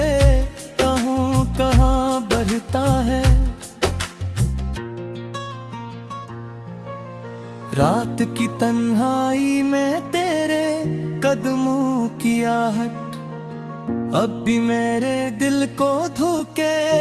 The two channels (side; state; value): both; identical; correlation 1.00